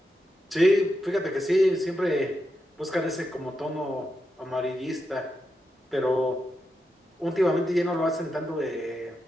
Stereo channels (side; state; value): both; normal; correlation 0.86